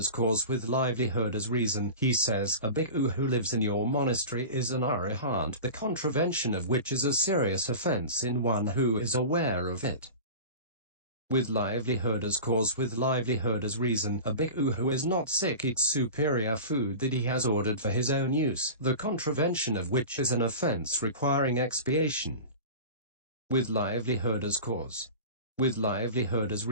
cause, with livelihood as reason, he says, a bhikkhu who lives in your monastery is an arahant, the contravention of which is a serious offense in one who is aware of it. With livelihood as cause, with livelihood as reason, a bhikkhu who is not sick eats superior food that he has ordered for his own use, the contravention of which is an offense requiring expiation. With livelihood as cause. With livelihood as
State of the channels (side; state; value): both; inverted; correlation -0.32